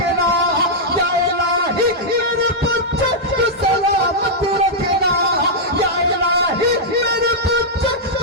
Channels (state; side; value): normal; both; correlation -0.07